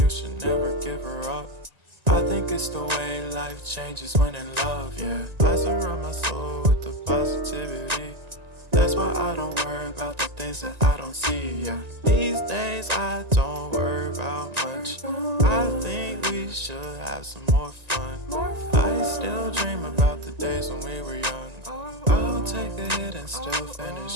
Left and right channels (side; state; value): left; late; 1.9 ms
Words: should never give her up. I think it's the way life changes when in love, yeah. I surround my soul with the positivity. That's why I don't worry about the things that I don't see, yeah. These days I don't worry about much. I think we should have some more fun. I still dream about the days when we were young. I'll take a hit and still finish